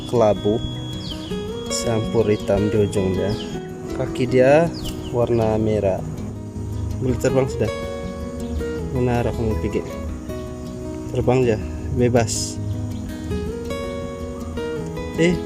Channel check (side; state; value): both; identical; correlation 1.00